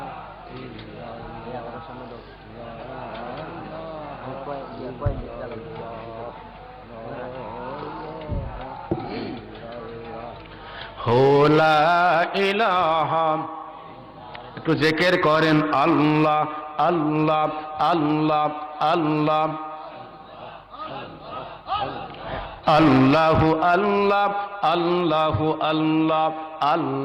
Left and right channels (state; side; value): identical; both; correlation 1.00